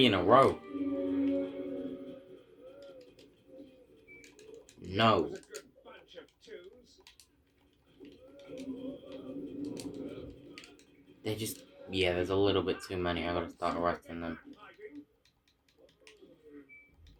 in a row. No. Was a good bunch of twos. They just... Yeah, there's a little bit too many. I gotta start arresting them. Hiding.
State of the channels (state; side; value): identical; both; correlation 1.00